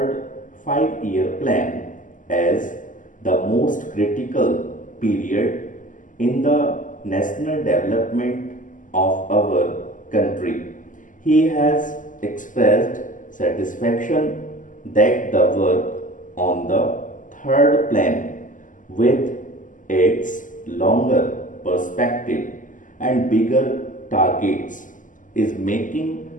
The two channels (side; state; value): right; late; 0.38 ms